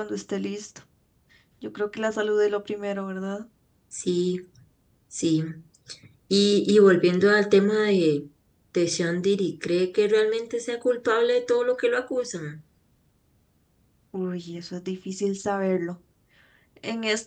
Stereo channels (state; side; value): identical; both; correlation 1.00